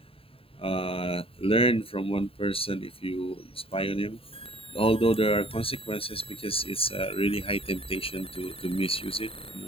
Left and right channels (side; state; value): right; late; 0.27 ms